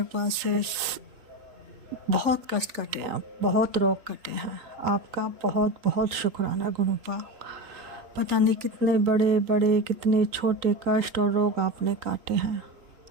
से बहुत कष्ट कटे हैं, बहुत रोग कटे हैं, आपका बहुत बहुत शुक्राना गुरुपा। पता नहीं कितने बड़े बड़े कितने छोटे कष्ट और रोग आपने काटे हैं।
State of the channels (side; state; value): left; late; 3.8 ms